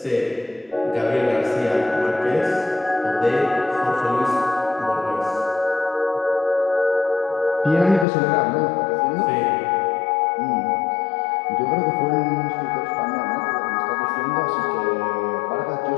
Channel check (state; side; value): drops out; right; at 8.1 s